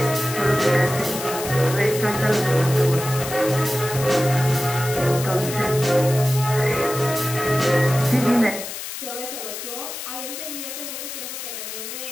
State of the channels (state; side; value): noise; left; hiss, 8 dB below the sound